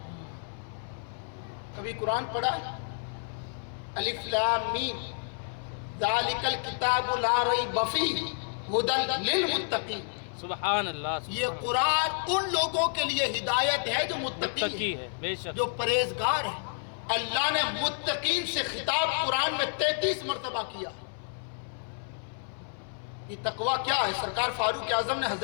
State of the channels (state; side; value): silent; right; 58 dB below the other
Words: کبھی قرآن پڑھا؟ الف لام میم ذالک الکتاب لا ریب فیہ ھدی للمتقین. سبحان اللہ. یہ قرآن ان لوگوں کے لیے ہدایت ہے جو متقی ہے، بے شک. جو پرہیزگار ہے. اللہ نے متقین سے خطاب قرآن میں 33 مرتبہ کیا. یہ تقوی کیا ہے؟ سرکار فاروق اعظم نے